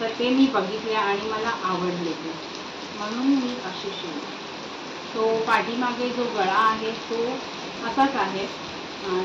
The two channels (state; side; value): identical; both; correlation 1.00